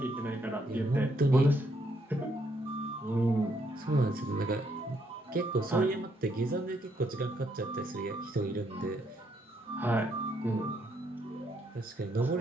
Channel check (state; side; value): normal; both; correlation 0.73